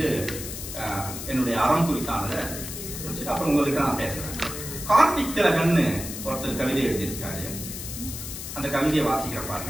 என்னுடைய அறம் குறித்தானதை அப்புறம் உங்ககிட்ட நான் பேசுறேன். கார்த்திக் திலகன்னு ஒருத்தர் கவிதை எழுதியிருக்காரு. அந்த கவிதையை வாசிக்கிற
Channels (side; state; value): left; noise; hiss, 8 dB below the sound